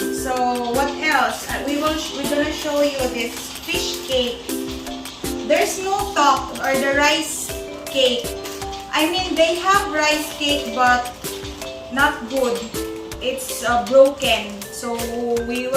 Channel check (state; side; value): identical; both; correlation 1.00